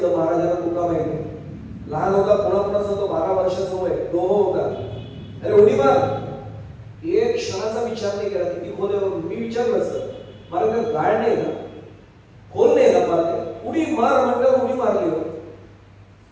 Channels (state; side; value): identical; both; correlation 1.00